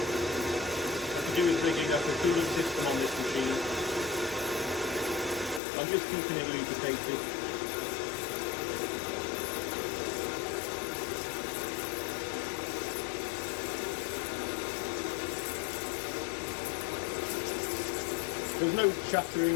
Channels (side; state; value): right; drops out; at 5.6 s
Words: What I do is rigging up a cooling system on this machine. I'm just keeping it lubricated. There's no